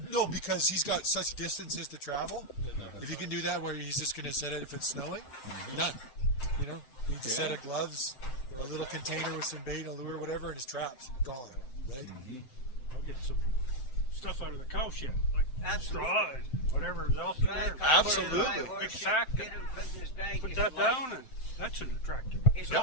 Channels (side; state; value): right; late; 7.8 ms